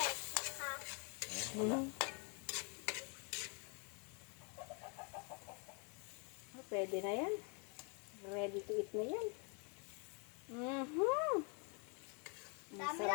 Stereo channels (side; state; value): right; quieter; 36.1 dB